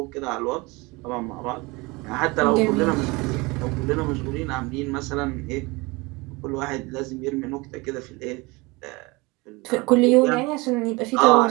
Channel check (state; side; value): quieter; left; 24.7 dB